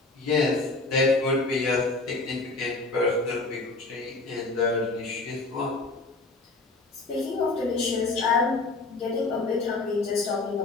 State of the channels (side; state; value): right; quieter; 3.4 dB